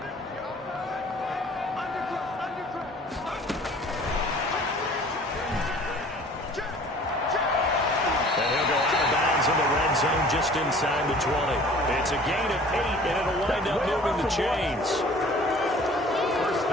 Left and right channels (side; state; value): both; normal; correlation 0.49